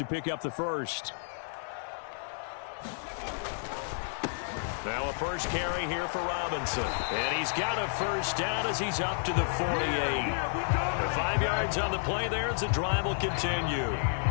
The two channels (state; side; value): silent; right; digital silence